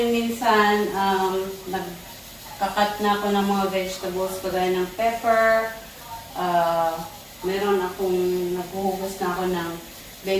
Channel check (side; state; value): both; identical; correlation 1.00